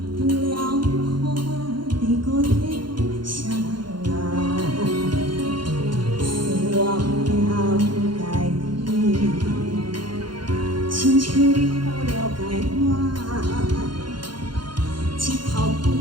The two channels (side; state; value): left; late; 0.72 ms